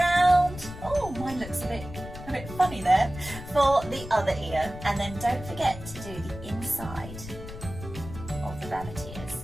Oh, mine looks a bit funny there, for the other ear. And then don't forget to do the inside of the rabbit ears.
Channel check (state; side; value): noise; left; rumble, 12 dB below the sound